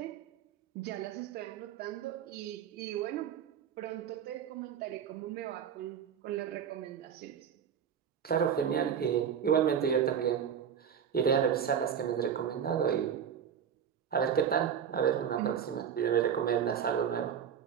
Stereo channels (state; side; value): quieter; left; 8.2 dB